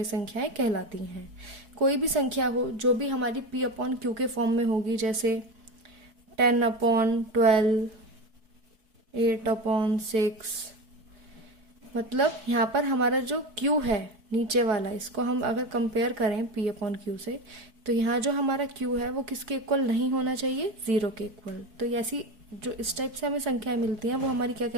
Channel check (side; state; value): left; late; 4.6 ms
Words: संख्याएं कहलाती हैं। कोई भी संख्या हो जो भी हमारी P/Q के फॉर्म में होगी, जैसे 10/12, 8/6, मतलब यहाँ पर हमारा जो Q है नीचे वाला, इसको हम अगर कंपेयर करें P/Q से, तो यहाँ जो हमारा Q है वो किसके इक्वल नहीं होना चाहिए? 0 के इक्वल। तो ऐसी जो इस टाइप से हमें संख्याएं मिलती हैं वो हमारी क्या